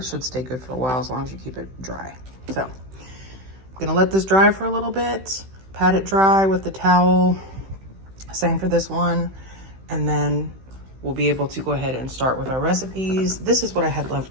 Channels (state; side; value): late; left; 16 ms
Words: should stay good for a while as long as you keep it dry. So I'm gonna let this dry for a little bit, pat it dry with the towel. Same for this one. And then we'll be able to go ahead and start with our recipes. This is what I had